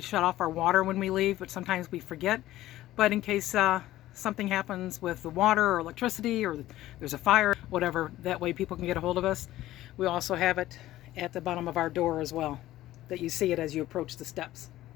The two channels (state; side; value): quieter; right; 15.1 dB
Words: off our water when we leave, but sometimes we forget. But in case something happens with the water or electricity, or there's a fire, whatever, that way people can get a hold of us. We also have it at the bottom of our door as well, that you see it as you approach the steps.